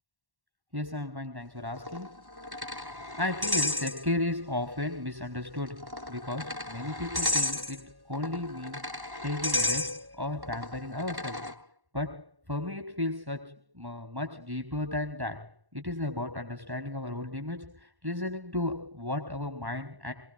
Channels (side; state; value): left; late; 1.1 ms